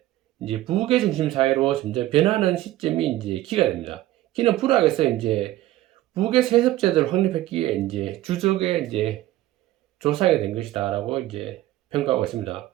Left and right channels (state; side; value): quieter; left; 15.3 dB